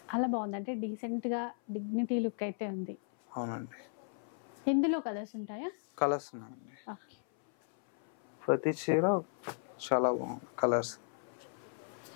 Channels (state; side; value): silent; right; 54 dB below the other